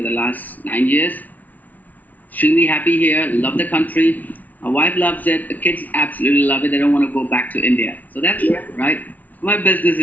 the last 9 years. Extremely happy here. Love the country. My wife loves it. The kids absolutely love it. They don't want to go back to India. So that's right. My business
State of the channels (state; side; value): late; right; 0.076 ms